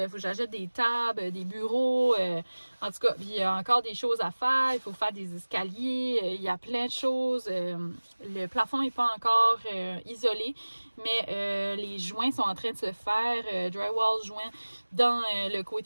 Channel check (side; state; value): both; inverted; correlation -1.00